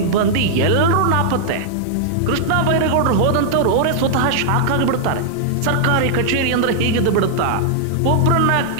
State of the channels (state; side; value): different; both; correlation -0.01